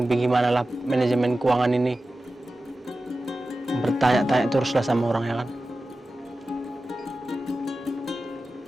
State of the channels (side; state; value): both; normal; correlation 0.94